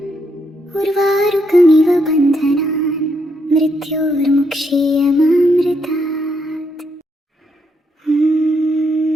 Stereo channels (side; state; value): both; normal; correlation 0.77